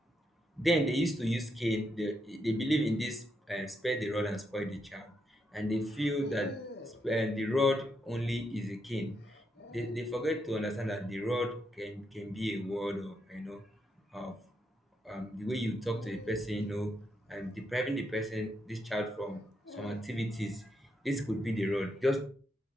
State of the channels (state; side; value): normal; both; correlation 0.80